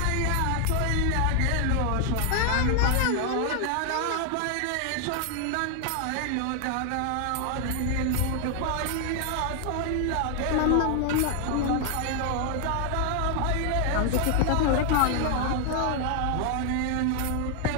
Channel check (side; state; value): both; different; correlation 0.00